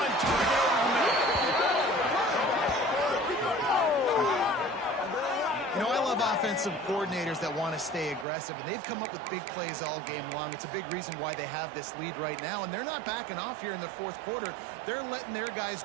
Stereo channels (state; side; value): drops out; left; at 8.2 s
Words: target over the middle. You know, I love offensive coordinators that want to stay aggressive, and they've come up with big plays all game long. It's a big reason why they have this lead right now, and they're not backing off here in the fourth quarter. They're letting their guys